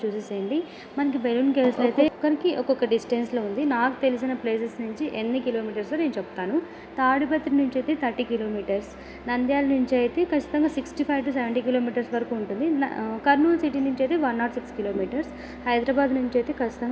చూసేసేయండి. మనకి బెలూన్ కేవ్స్‌లో అయితే ఒక్కొక్కరికి ఒక్కొక్క డిస్టెన్స్‌లో ఉంది. నాకు తెలిసిన ప్లేసెస్ నుంచి ఎన్ని కిలోమీటర్సో నేను చెప్తాను. తాడిపత్రి నుంచి అయితే 30 కిలోమీటర్స్, నంద్యాల నుంచి అయితే ఖచ్చితంగా 65-70 కిలోమీటర్స్ వరకు ఉంటుంది. కర్నూలు సిటీ నుంచి అయితే 106 కిలోమీటర్స్, హైదరాబాద్ నుంచి అయితే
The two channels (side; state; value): both; identical; correlation 1.00